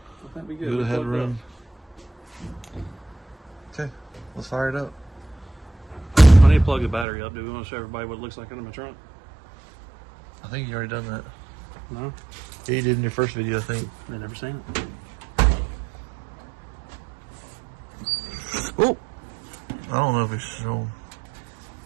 I think we good. good We ahead plugged room. up. Okay, let's fire it up. I need to plug the battery up. Do we want to show everybody what it looks like under my trunk? I think you already done that. No, Yeah, you did in your first video, I think. they never seen it. Oh, I don't know if it's shown.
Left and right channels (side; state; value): left; drops out; at 7.1 s